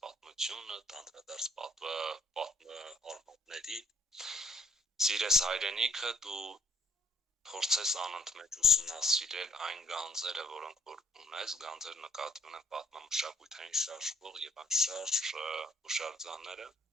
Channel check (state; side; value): normal; both; correlation 0.60